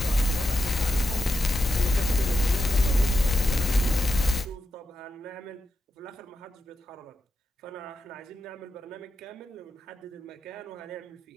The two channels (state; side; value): normal; both; correlation 0.87